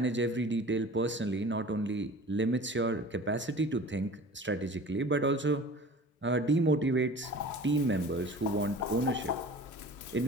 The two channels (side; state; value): both; normal; correlation 0.41